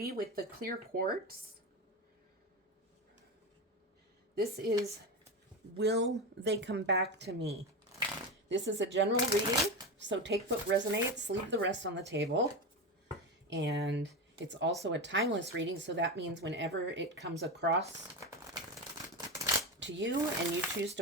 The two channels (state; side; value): normal; both; correlation 0.19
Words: with the clear quartz. This is, will they come back to me? This is a general reading, so take what resonates, leave the rest on the table. And it's also a timeless reading, so that means whenever it comes across to you and you choose